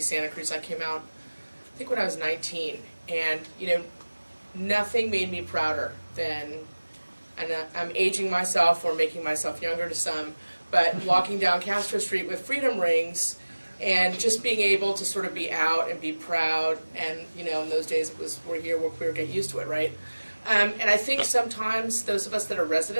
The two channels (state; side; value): inverted; both; correlation -1.00